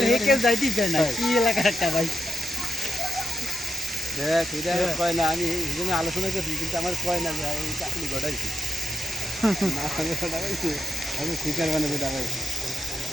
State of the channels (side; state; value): both; normal; correlation 0.86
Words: হে কেউ যাইতেই চায় না কি এলাকা একটা ভাই দেখ এটা কয় না আমি এই জন্য আলোচনা করছি কিন্তু আমার কয় না যে এই চাকরি ঘটাইছি না আমি ঘটাইছি আমি শিকার বানাবো ডাকাইছি